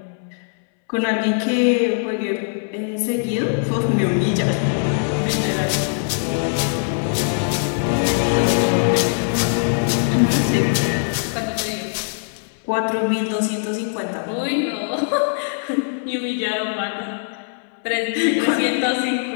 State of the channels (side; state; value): right; silent; 65 dB below the other